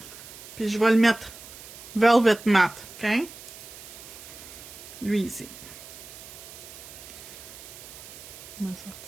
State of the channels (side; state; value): right; noise; hiss, 15 dB below the sound